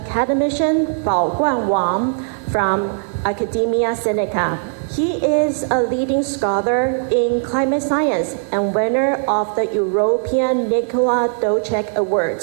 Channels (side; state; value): left; silent; digital silence